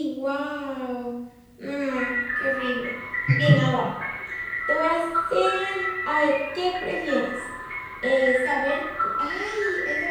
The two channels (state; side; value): identical; both; correlation 1.00